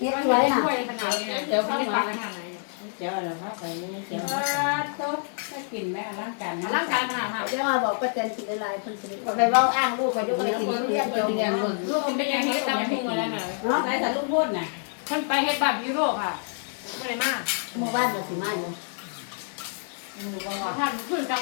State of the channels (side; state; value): right; silent; 60 dB below the other